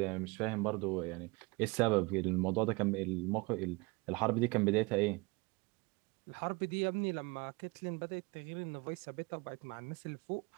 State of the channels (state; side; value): quieter; left; 26.1 dB